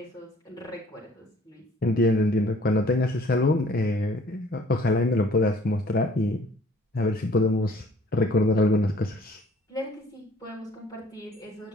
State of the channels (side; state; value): both; normal; correlation 0.55